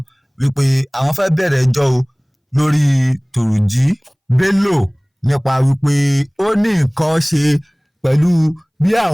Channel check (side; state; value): both; identical; correlation 1.00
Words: wípé àwọn fẹ́ bẹ̀rẹ̀ ẹjọ́ o lórí Turji Bello nípa wípé ó ní nǹkan ṣe pẹ̀lú bí